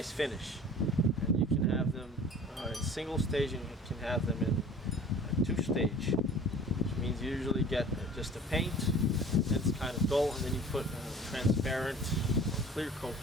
finish. And you can have them in single stage, and you can have them in a two-stage, which means you usually get just a paint, and it's kind of dull, and then you put a transparent clear coat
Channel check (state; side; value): normal; both; correlation 0.45